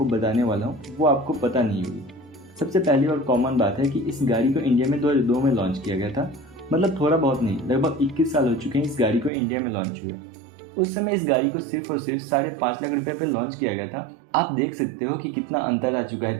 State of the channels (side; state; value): left; drops out; at 9.3 s